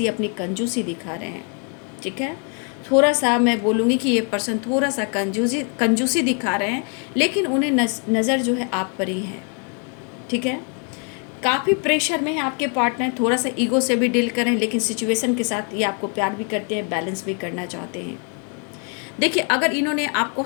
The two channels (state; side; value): quieter; right; 39.5 dB